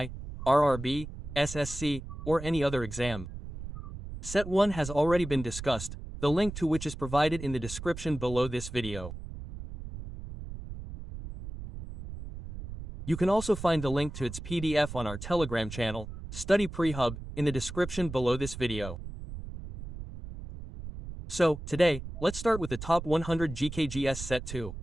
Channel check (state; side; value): noise; right; rumble, 10 dB below the sound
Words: RRB, SSC, or any other exam. Set 1 has already been discussed, the link to which is provided in the description below this video. You can also find the link to its PDF on our Telegram channel, Study Pre-Hub, in the description below this video. So, today, let's start with the top 100 GK Gs Set 2.